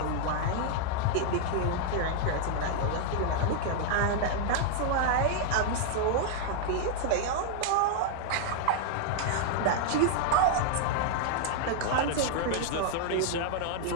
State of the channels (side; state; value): both; different; correlation 0.00